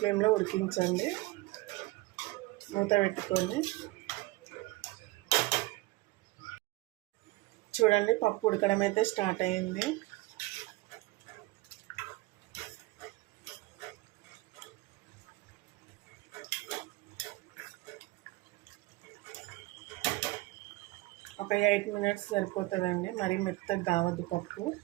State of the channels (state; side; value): quieter; left; 20.7 dB